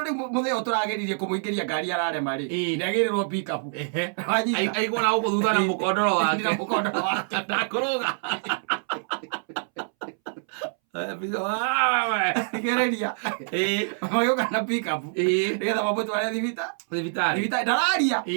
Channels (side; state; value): left; silent; 61 dB below the other